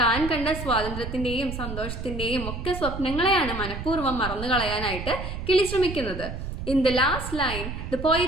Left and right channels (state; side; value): noise; right; rumble, 7 dB below the sound